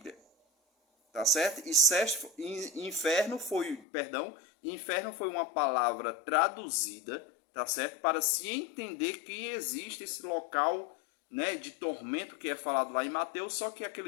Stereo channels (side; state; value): right; drops out; at 3.9 s